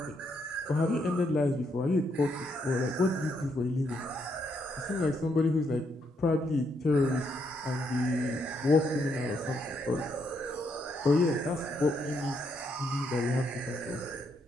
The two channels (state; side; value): normal; both; correlation 0.76